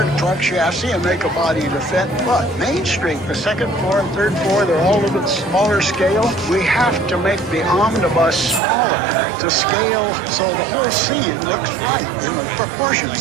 truck chassis and make a body to fit. But Main Street, the second floor and third floor, they're all a little bit smaller scale. We have to make the omnibus smaller to scale so the whole scene looks right in the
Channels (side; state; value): left; drops out; at 8.6 s